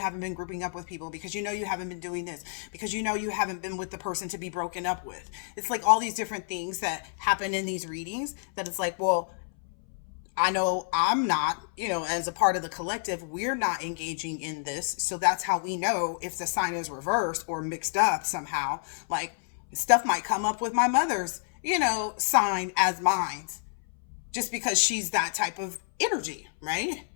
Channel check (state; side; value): silent; right; 59 dB below the other